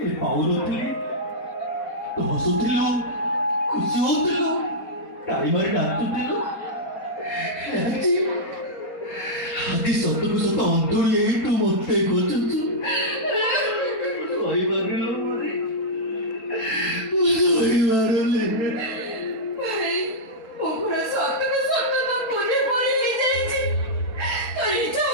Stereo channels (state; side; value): late; right; 4.2 ms